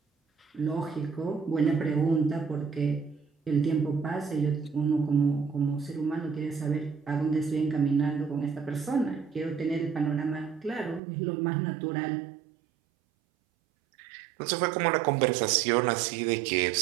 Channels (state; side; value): drops out; left; at 11.0 s